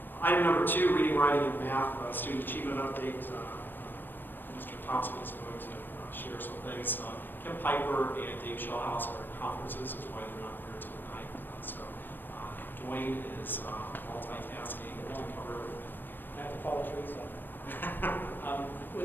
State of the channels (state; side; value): late; right; 0.093 ms